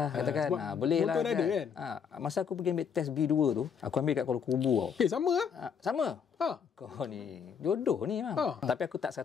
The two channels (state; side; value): quieter; right; 7.0 dB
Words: katakan. Boleh lah. Motor ada kan? Masa aku pergi ambil test B2 tu, aku ambil kat Kuala Kubu tau. Sama lah. Sama. Kau ni jodoh ni memang. Tapi aku tak